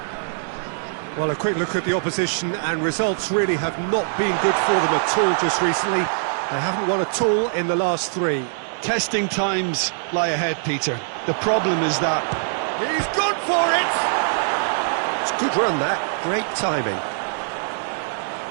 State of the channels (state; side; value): silent; left; digital silence